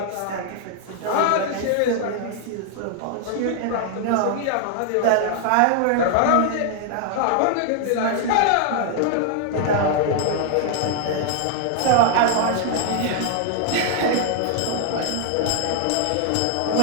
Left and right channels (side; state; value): both; different; correlation 0.00